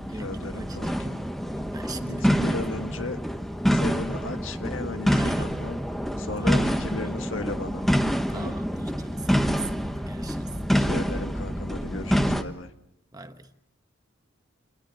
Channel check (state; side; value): normal; both; correlation 0.90